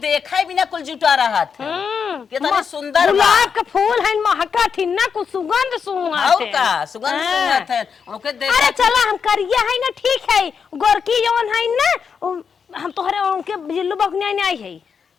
देखा बिना कुल जुटा रहा था कितना सुंदर बा। गुलाब के फूल है महका थी ना कुछ सुगंध आओ का सुगंध सुंगत है ओके देख। अरे चला हम करिया है ना ठीक है गोरकी जौन है ना हम तोहरे उनके जिल्लू बकने नहीं आई है।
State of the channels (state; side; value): quieter; right; 6.4 dB